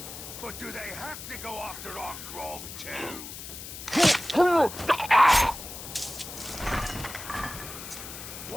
but do they have to go after our grog too?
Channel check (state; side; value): noise; left; hiss, 11 dB below the sound